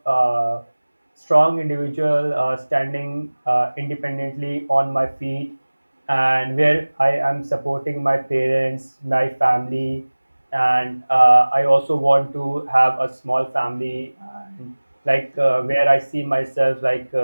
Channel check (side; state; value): both; inverted; correlation -1.00